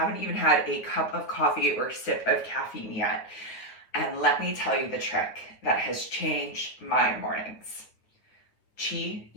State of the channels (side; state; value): right; late; 9.2 ms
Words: even had a cup of coffee or sip of caffeine yet. And let me tell you the trick that has changed my mornings. Qi